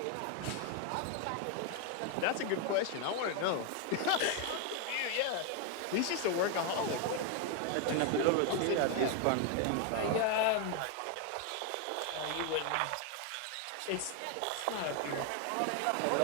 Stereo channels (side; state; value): both; different; correlation 0.01